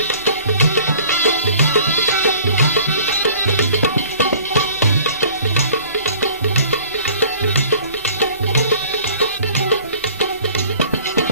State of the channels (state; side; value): inverted; both; correlation -0.50